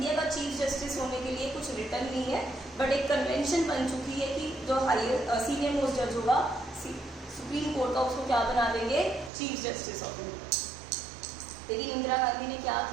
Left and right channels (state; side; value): drops out; left; at 9.3 s